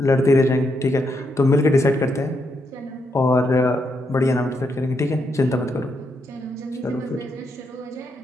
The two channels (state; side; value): normal; both; correlation 0.80